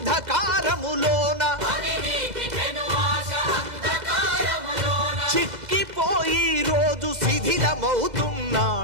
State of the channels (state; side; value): late; left; 2.0 ms